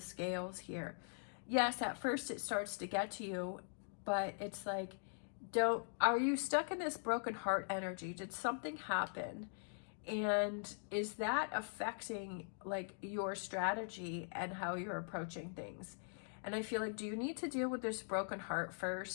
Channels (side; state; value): right; silent; digital silence